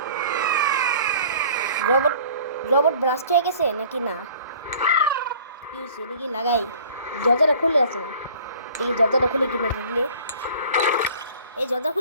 রোবট রোবট ব্লাস্ট হয়ে গেছে নাকি না? কি হয়েছে দেখি লাগাই। দরজাটা খুলে আছে না, দেখি দরজাটা খুলে কিনা দিলে। এই দরজা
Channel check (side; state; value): both; inverted; correlation -0.50